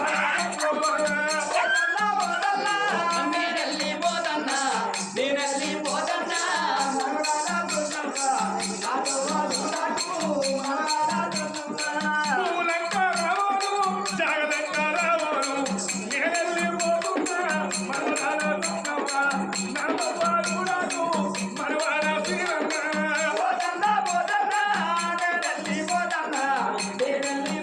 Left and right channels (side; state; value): both; identical; correlation 1.00